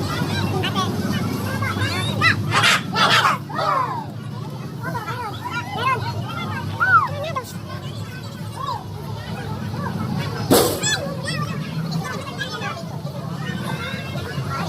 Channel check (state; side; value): identical; both; correlation 1.00